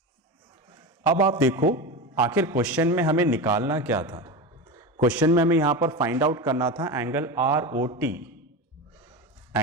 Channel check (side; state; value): both; normal; correlation 0.22